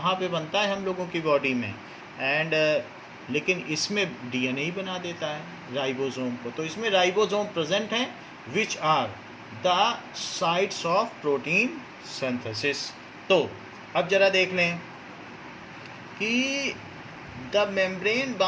पे बनता है हम लोगों की बॉडी में। एंड लेकिन इसमें डीएनए ही बना देता है राइबोसोम को। तो इसमें राइबोसोम प्रेजेंट हैं which are the sites of protein synthesis. तो अब जरा देख लें कि the membrane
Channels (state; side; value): identical; both; correlation 1.00